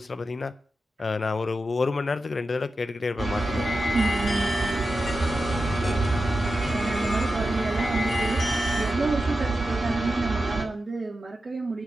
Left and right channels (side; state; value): both; normal; correlation 0.91